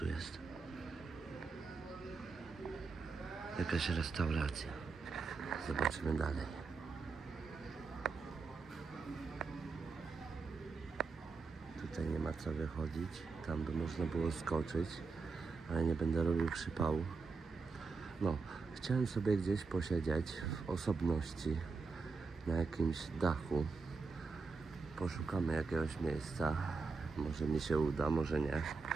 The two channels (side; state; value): left; quieter; 4.4 dB